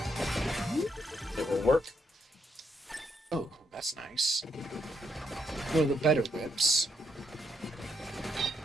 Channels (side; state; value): both; normal; correlation 0.77